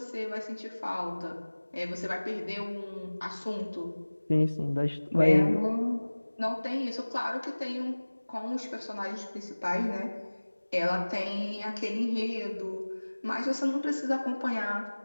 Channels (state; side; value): inverted; both; correlation -1.00